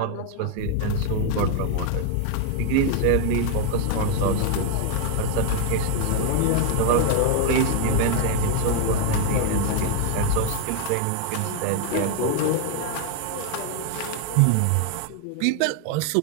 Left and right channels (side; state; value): both; different; correlation 0.00